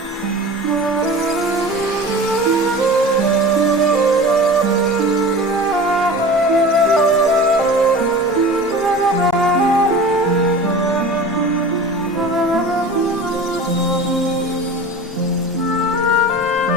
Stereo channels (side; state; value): both; normal; correlation 0.36